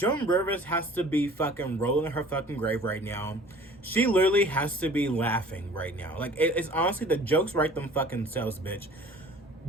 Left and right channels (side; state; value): both; normal; correlation 0.48